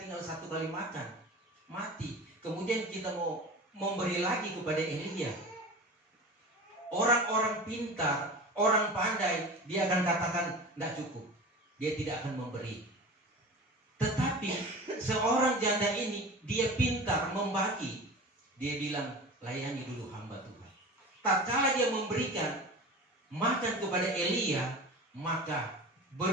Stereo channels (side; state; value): both; normal; correlation 0.34